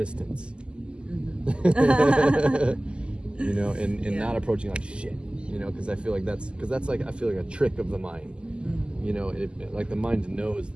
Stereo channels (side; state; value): left; late; 0.050 ms